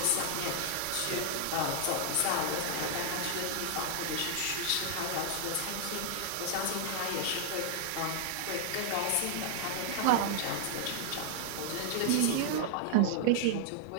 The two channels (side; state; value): both; different; correlation -0.01